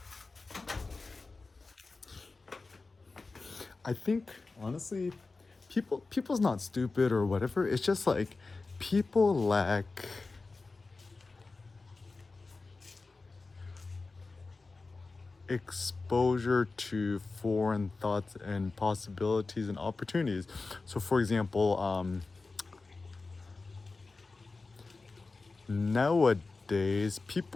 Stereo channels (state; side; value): quieter; right; 3.8 dB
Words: I think honestly people's not stupid or whatever. It's just like people lack exposure to foreign thoughts and possibilities and opportunities. So for example, nowadays